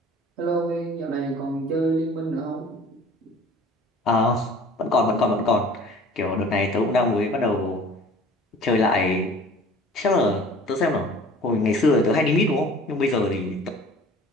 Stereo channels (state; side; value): normal; both; correlation 0.47